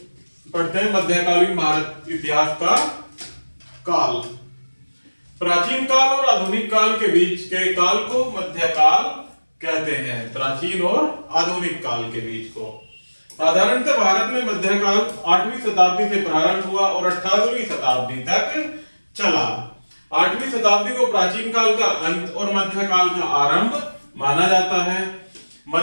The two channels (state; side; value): inverted; both; correlation -1.00